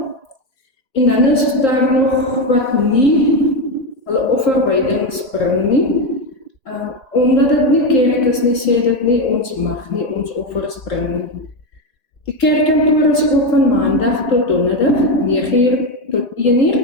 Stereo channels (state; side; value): late; right; 3.8 ms